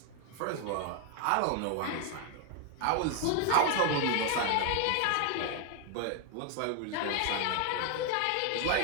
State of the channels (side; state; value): both; different; correlation 0.00